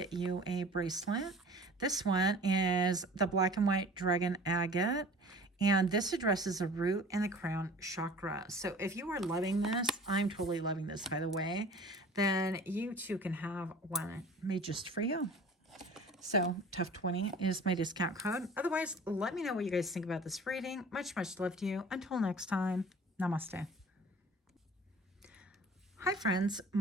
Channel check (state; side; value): normal; both; correlation 0.44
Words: you a bracelet. This one is the black and white dragon agate. And this addresses the root and the crown chakra. So if you are loving this, I'm totally loving this, by the way, then you too can have one made just for you. So Tough20 is my discount code. Otherwise, let me know what you guys think about this reading. Much, much love to you. Until next time, namaste. Hi, friends.